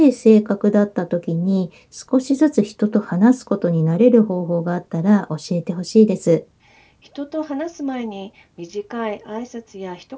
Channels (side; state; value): both; identical; correlation 1.00